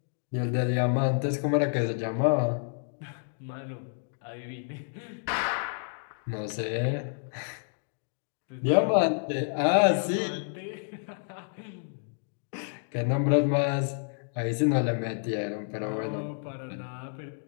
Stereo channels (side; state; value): right; silent; digital silence